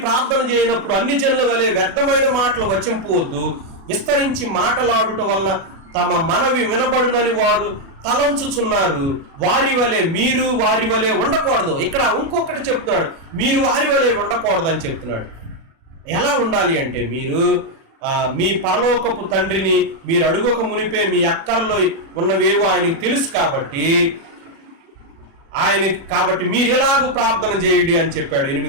ప్రార్థన చేయనప్పుడు అన్ని జనుల వలె వ్యర్థమైన మాటలు వచింపవద్దు, విస్తరించి మాటలాడుట వల్ల తమ మనవి వినబడునని వారు తలంచుచున్నారు, మీరు వారి వలె ఉండకూడదు. ఇక్కడ ఇంకొకటి చెప్తున్నాడు, మీరు వారి వలె ఉండకూడదు అని చెప్తున్నాడు. ఎలా ఉండాలి అంటే, మీరు మీ పరలోకపు తండ్రిని మీరు అడుగక మునిపే మీ అక్కరలో ఉన్నవేవో ఆయనకు తెలుసు కాబట్టి మీరు ఎలాగూ ప్రార్థన చేయండి అని చెప్పాడు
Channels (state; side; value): late; left; 36 ms